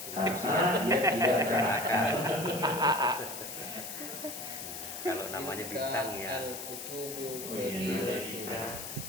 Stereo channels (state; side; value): noise; left; hiss, 8 dB below the sound